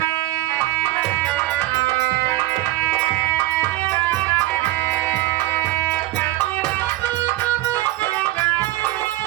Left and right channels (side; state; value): left; quieter; 17.4 dB